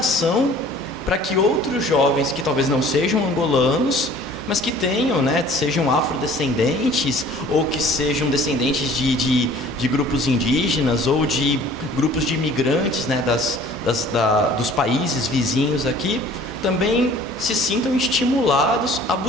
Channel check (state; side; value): normal; both; correlation 0.50